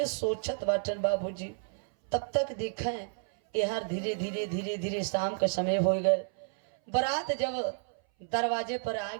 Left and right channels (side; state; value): left; silent; 57 dB below the other